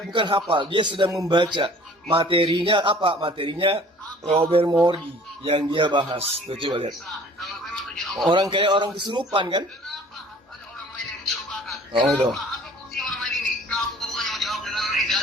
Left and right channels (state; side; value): normal; both; correlation 0.50